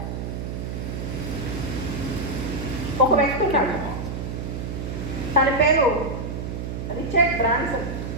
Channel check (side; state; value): right; noise; hum, 5 dB below the sound